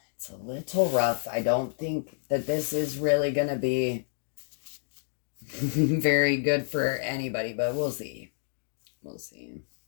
It's a little rough. I don't think that this is really going to be very good for anybody, but we'll see. We'll see.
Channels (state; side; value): silent; right; digital silence